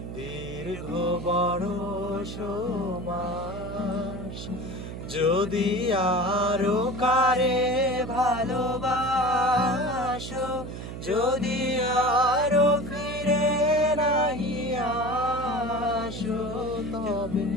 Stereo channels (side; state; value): right; noise; hum, 9 dB below the sound